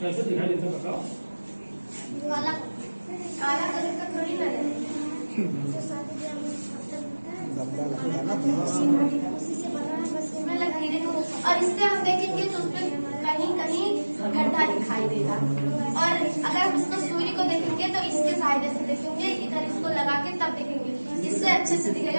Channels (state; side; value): inverted; both; correlation -1.00